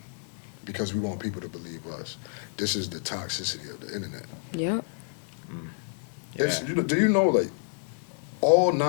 because we want people to believe us. This is the toxicity of the internet. Yep. It's, do you know, like, all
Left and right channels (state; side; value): silent; right; 59 dB below the other